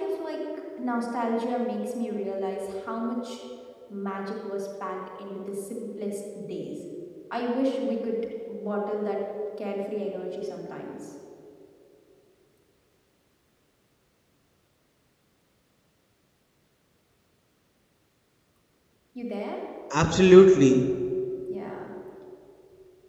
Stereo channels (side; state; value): both; identical; correlation 1.00